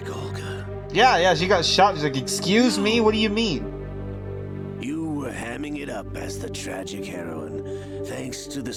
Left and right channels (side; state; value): both; identical; correlation 1.00